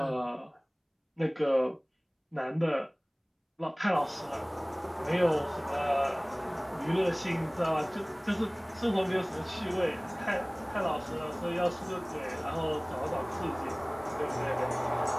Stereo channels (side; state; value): both; identical; correlation 1.00